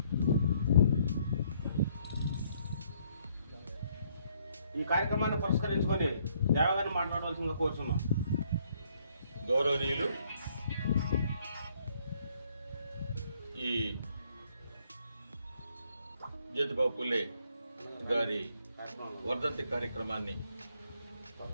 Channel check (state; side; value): inverted; both; correlation -0.68